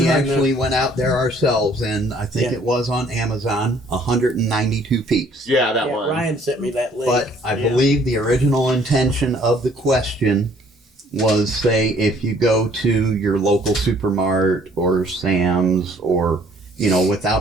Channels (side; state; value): both; normal; correlation 0.60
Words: actually went out there ourselves, and I think it was on Amazon, 192 piece. Yeah, that Yeah, one. Ryan sent me that link. But I believe the original intention of the question was, say, if you go to your local supermart or Sam's or,